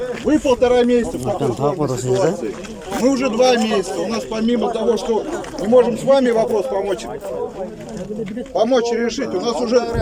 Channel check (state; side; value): identical; both; correlation 1.00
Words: Вы 1,5 месяца в такой сложной ситуации. Мы уже 2 месяца. У нас помимо того, что мы можем с вами вопрос помочь решить, у нас уже...